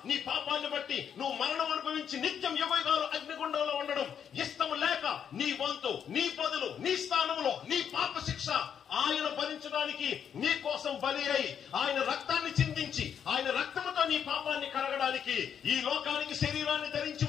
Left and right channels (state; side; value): quieter; right; 8.2 dB